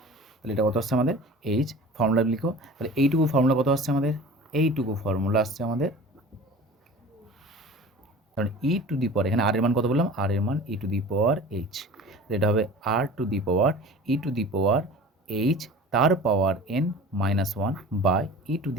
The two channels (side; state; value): both; normal; correlation 0.40